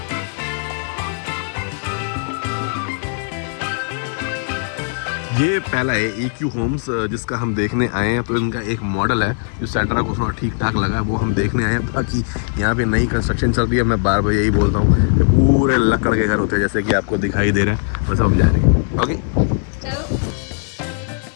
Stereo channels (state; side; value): silent; right; digital silence